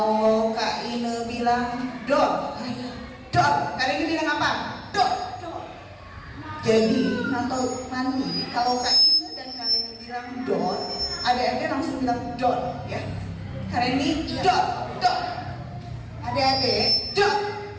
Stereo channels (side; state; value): both; identical; correlation 1.00